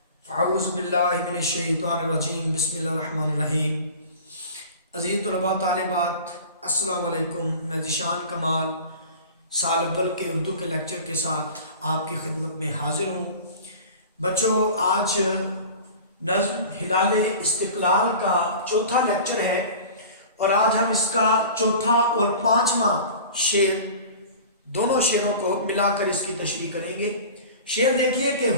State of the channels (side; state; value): both; inverted; correlation -0.39